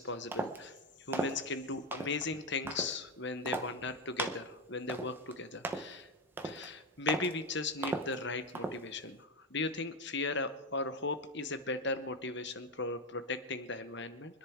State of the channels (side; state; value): both; normal; correlation 0.13